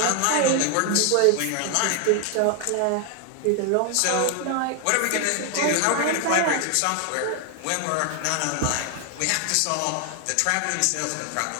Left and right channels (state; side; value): different; both; correlation 0.01